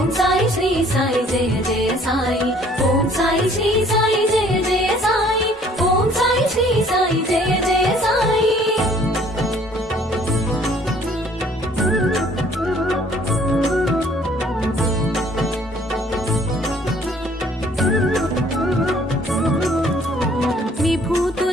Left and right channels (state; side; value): normal; both; correlation 0.58